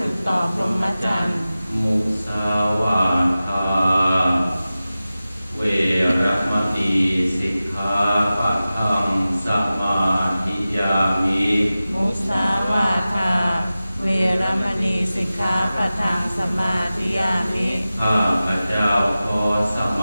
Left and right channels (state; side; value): inverted; both; correlation -0.95